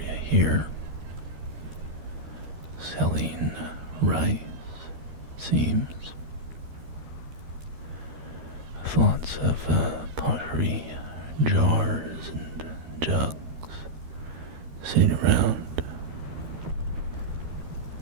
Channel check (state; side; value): late; left; 13 ms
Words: here selling rice, seems. With lots of pottery, jars and jugs sitting around.